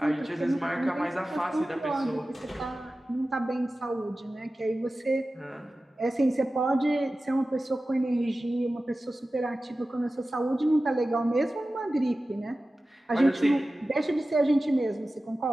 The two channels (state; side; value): normal; both; correlation 0.95